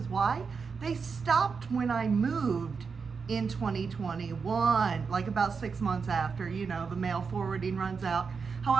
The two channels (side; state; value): left; quieter; 5.4 dB